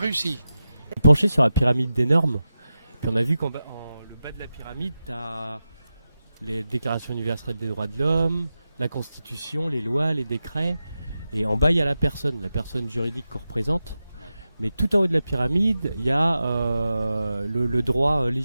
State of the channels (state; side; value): inverted; both; correlation -0.92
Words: Penché sur la pyramide des normes. Puis on a vu qu'en le bas de la pyramide, tu as les déclarations universelles des droits de l'homme, la Constitution, les lois, les décrets. Et en bas, il y a la personne juridique qu'on représente. Mais tout en haut de la pyramide, il y a le droit